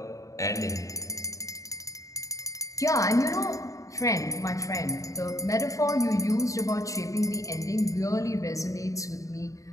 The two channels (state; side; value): late; right; 0.16 ms